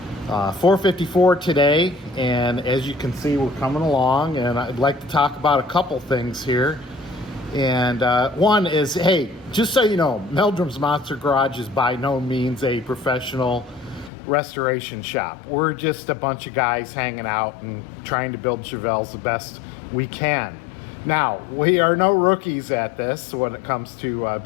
454 today. And as you can see, we're coming along, and I'd like to talk about a couple things here. And one is, hey, just so you know, Meldrum's Monster Garage is by no means a professional restoration shop. We're just a bunch of guys hanging out and trying to build Chevelles the best we can. Now, we are no rookies at this when it comes to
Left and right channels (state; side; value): drops out; right; at 14.1 s